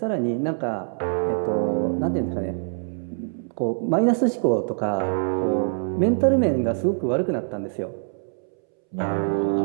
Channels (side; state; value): left; silent; 62 dB below the other